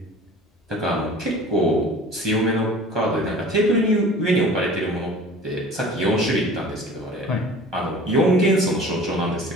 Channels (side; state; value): both; normal; correlation 0.43